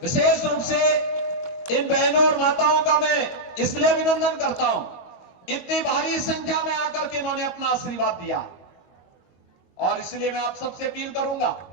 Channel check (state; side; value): late; right; 22 ms